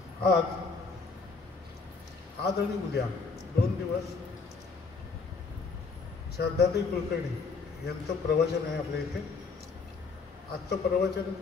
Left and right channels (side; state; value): right; quieter; 4.5 dB